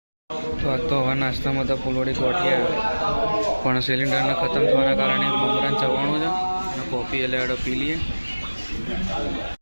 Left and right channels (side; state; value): both; inverted; correlation -1.00